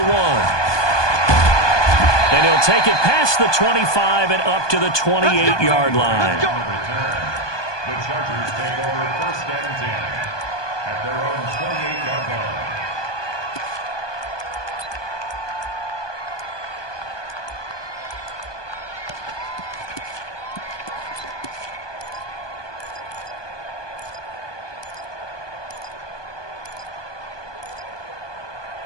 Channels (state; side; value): late; right; 1.2 ms